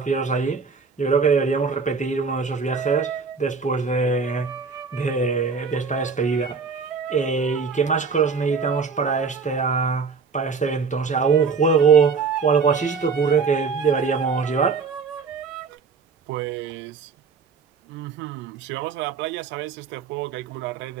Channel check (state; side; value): quieter; left; 5.2 dB